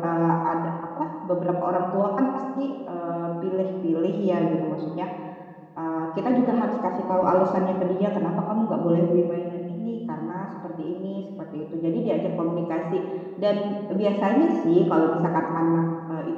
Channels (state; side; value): identical; both; correlation 1.00